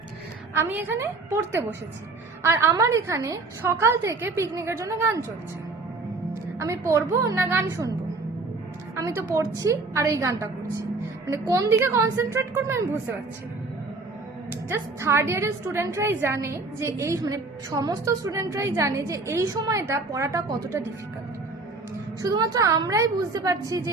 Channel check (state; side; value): quieter; left; 3.6 dB